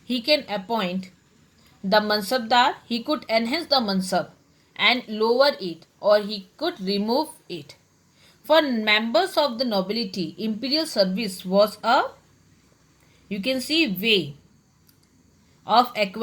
he can appoint the mansabdar, he could enhance the mansab and lower it, or he could remove it. For members of the nobility, imperial service was a, you can see, way of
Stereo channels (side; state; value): both; identical; correlation 1.00